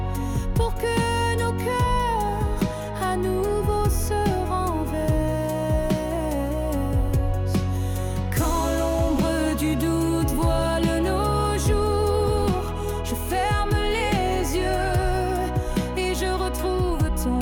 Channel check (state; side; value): identical; both; correlation 1.00